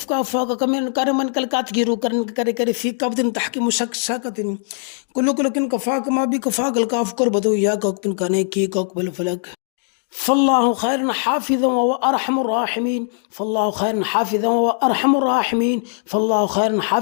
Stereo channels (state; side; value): silent; right; digital silence